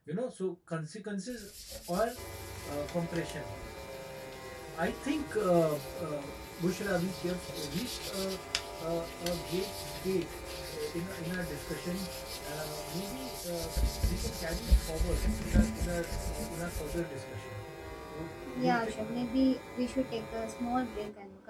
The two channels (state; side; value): identical; both; correlation 1.00